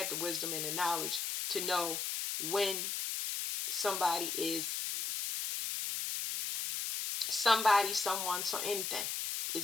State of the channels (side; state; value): left; noise; hiss, 2 dB below the sound